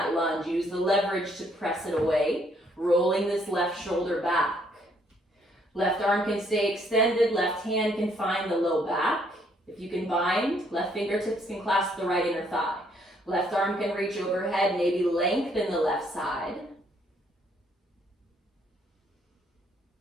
lunge. Use the leverage to press it away, rolling this left shoulder back. Left arm can stay extended, left hand can find the low back. If you can bind, left fingertips can clasp the right inner thigh. Left arm can reach overhead, maybe lengthen the left side.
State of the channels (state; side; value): normal; both; correlation 0.68